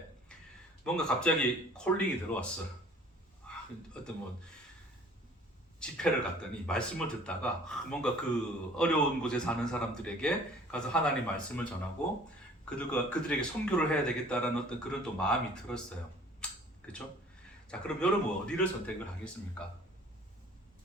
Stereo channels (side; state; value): both; normal; correlation 0.52